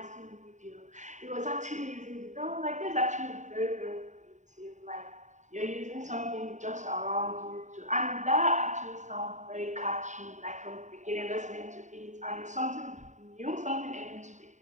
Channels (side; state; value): left; late; 0.35 ms